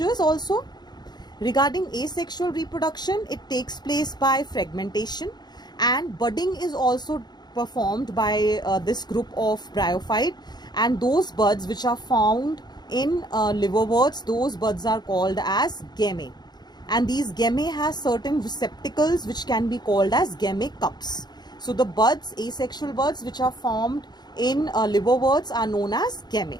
also. Regarding asexual reproduction, it takes place by fragmentation and budding is also performed by this group of bryophyte, and those buds which are found in liverworts, those buds are called as gammae, and these gammae has certain receptacles which can be called as gammae cups. So the buds, asexual buds which are formed in liverworts are known as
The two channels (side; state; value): right; late; 0.20 ms